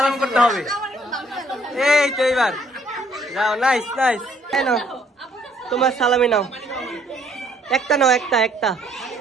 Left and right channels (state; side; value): normal; both; correlation 0.64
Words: করতে হবে। এই তো এইবার যাও। Nice nice. নাও তোমার সালামি নাও, একটা নাও, একটা একটা।